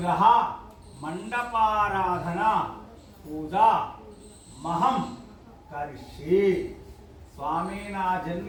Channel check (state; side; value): identical; both; correlation 1.00